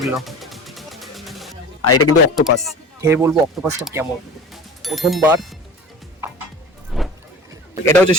আর এটা কিন্তু অক্টোপাস, খেয়ে বলবো অক্টোপাসটা কেমন। প্রথমবার। এটা হচ্ছে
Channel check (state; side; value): normal; both; correlation 0.37